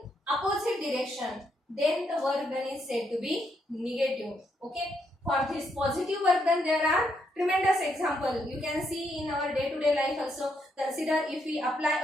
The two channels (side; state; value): both; normal; correlation 0.77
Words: opposite direction, then the work done is said to be negative. Okay, for this positive work done, there are tremendous example. You can see in our day-to-day life also. Consider if we